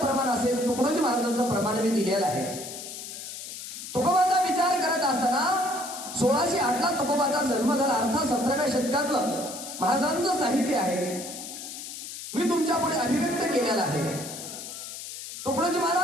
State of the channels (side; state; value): left; noise; hiss, 10 dB below the sound